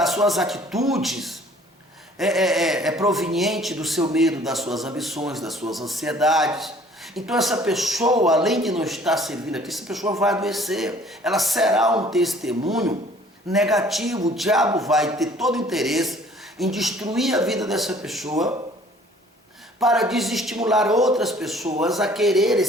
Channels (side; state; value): both; normal; correlation 0.54